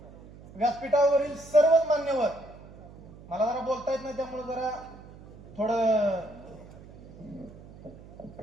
व्यासपीठावरील सर्वच मान्यवर. मला जरा बोलता येत नाही त्यामुळे जरा थोडं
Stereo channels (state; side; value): noise; right; hum, 19 dB below the sound